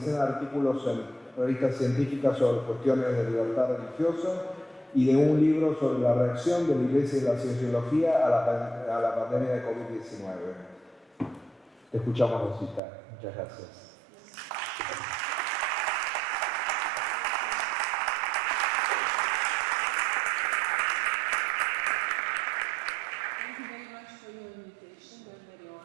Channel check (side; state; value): left; drops out; at 12.8 s